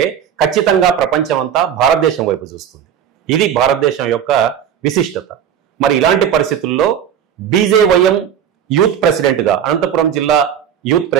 ఖచ్చితంగా ప్రపంచం అంతా భారతదేశం వైపు చూస్తుంది. ఇది భారతదేశం యొక్క విశిష్టత. మరి ఇలాంటి పరిస్థితుల్లో బీజేవైఎం యూత్ ప్రెసిడెంట్గా, అనంతపురం జిల్లా యూత్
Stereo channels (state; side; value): quieter; left; 9.1 dB